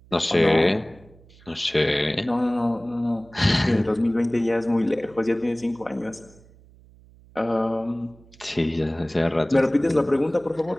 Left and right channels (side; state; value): right; noise; hum, 26 dB below the sound